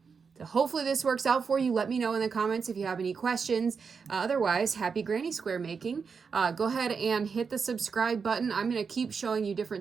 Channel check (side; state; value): left; quieter; 5.6 dB